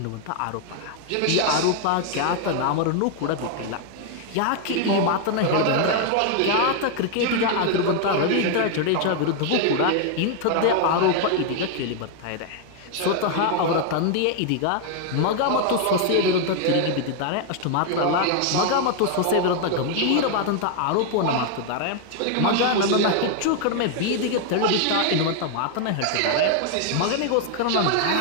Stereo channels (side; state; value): both; different; correlation 0.00